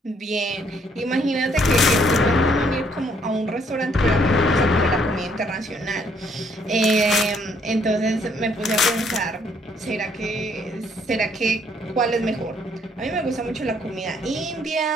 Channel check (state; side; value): normal; both; correlation 0.67